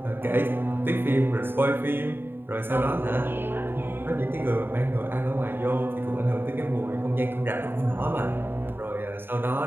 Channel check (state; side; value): late; left; 0.10 ms